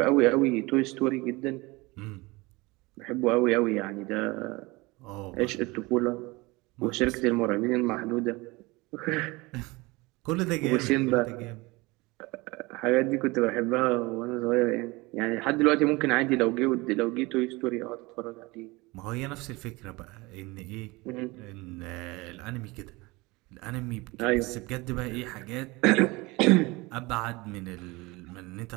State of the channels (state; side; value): quieter; left; 23.5 dB